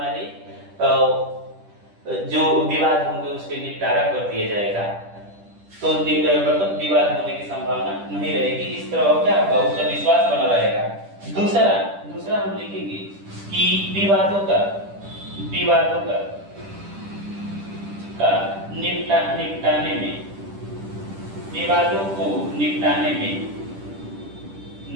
जो विवाद होंगे उसके निपटारा कर दिया जाएगा, तो मतलब विवाद होने की संभावना नहीं रहेगी। इस तरह क्या होगा, उसका विश्वास बना रहेगा। दूसरा हम लिखेंगे कि विवादों का निपटाने में, विवादों को निपटाने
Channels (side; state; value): left; late; 10 ms